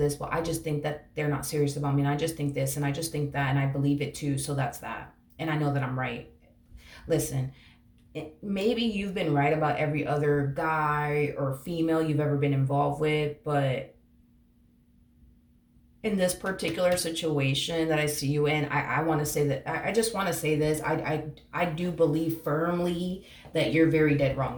Well, I just think that they're not serious about me, and I just think this, and I just think that, and I believe it too, so that's that, and I know that I'm right. Listen, maybe you've been right about every other guy or female you've ever been involved with, but in this particular situation that I see you in, I want to say that I just want to say this. I do believe firmly that you're very dead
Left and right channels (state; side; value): identical; both; correlation 1.00